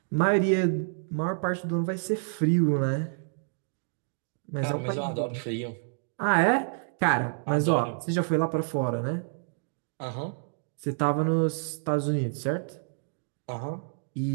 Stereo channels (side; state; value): left; silent; digital silence